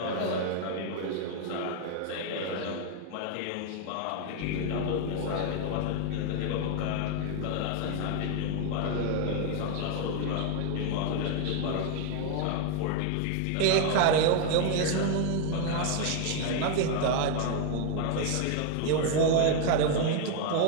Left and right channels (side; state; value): both; different; correlation 0.00